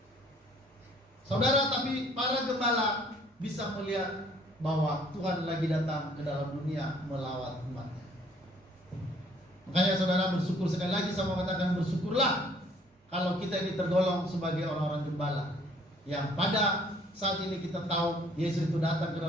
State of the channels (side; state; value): both; normal; correlation 0.59